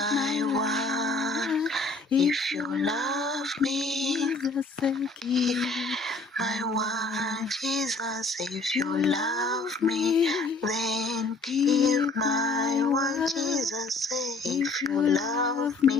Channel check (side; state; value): right; quieter; 3.5 dB